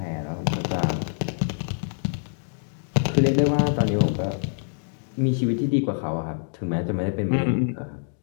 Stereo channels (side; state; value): right; silent; digital silence